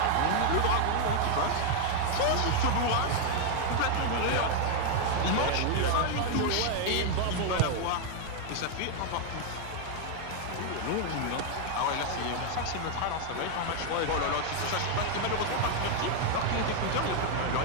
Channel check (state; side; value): different; both; correlation 0.00